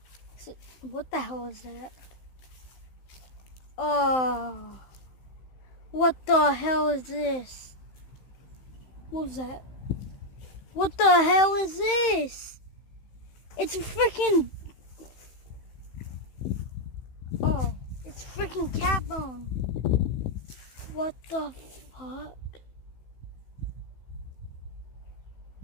So, what the hell is that? Oh, what the hell is this? What was that? What the hell is this? It's a freaking... Oh, it's freaking cat bone. What the fuck?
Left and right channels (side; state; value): right; late; 15 ms